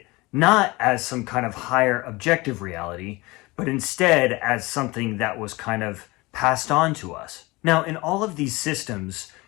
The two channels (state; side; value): quieter; right; 22.8 dB